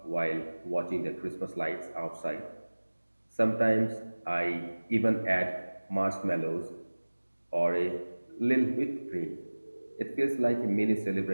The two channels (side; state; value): both; inverted; correlation -1.00